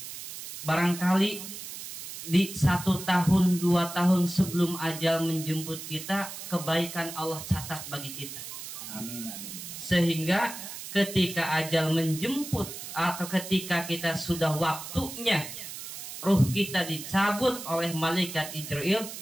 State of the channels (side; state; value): right; noise; hiss, 10 dB below the sound